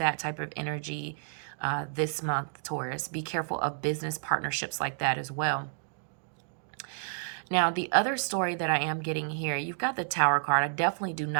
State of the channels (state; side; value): silent; left; digital silence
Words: type of energy this month, Taurus. Be careful of business partnerships like that as well. Now, the other story that I am getting here, you've got the Tower card. I definitely do